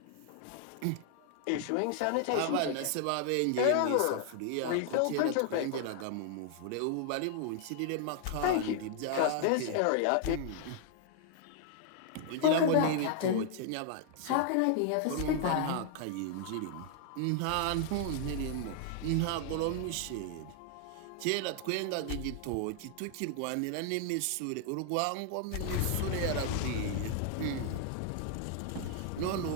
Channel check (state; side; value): different; both; correlation 0.00